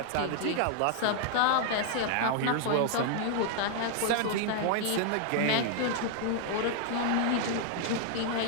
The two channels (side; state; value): both; different; correlation -0.01